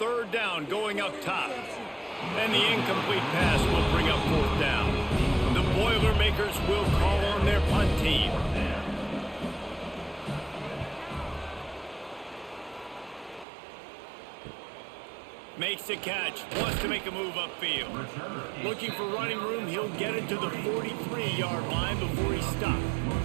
down, going up top. And the incomplete pass will bring up 4th down. The Boilermakers will call on their punt team. Makes the catch, wants to make a move upfield. Looking for running room, he'll get it to the 43-yard line before he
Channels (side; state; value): left; drops out; at 13.5 s